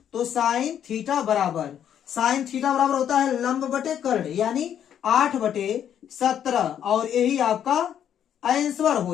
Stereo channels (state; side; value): quieter; right; 9.5 dB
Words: तो साइन थीटा बराबर होता है लंब बटे कर्ण, यानी 8/17, और यही आपका आंसर